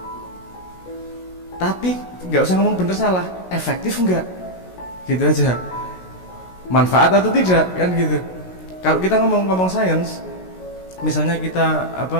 Tapi nggak usah ngomong benar salah, efektif enggak? Gitu aja. Manfaat atau tidak, kan gitu. Kalau kita ngomong sains, misalnya kita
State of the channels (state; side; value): late; right; 16 ms